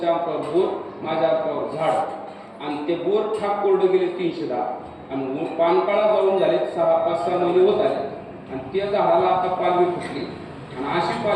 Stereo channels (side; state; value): both; identical; correlation 1.00